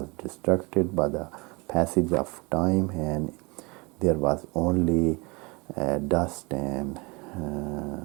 destructed by the passage of time, and there was only dust and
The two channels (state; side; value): quieter; left; 27.2 dB